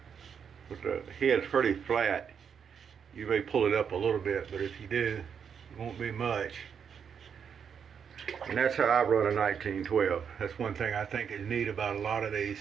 with the head's pretty flat. You may pull it up a little bit, but if you do, it won't be much. And that's how I run a 1912. That's one thing I think is neat about a lot of these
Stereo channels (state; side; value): quieter; left; 7.2 dB